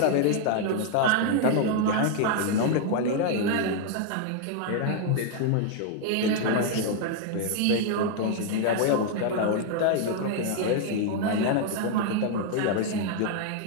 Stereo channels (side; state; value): both; different; correlation 0.00